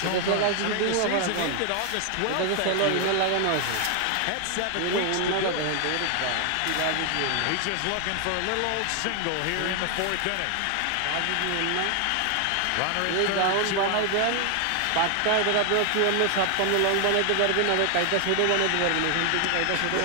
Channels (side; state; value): both; different; correlation 0.00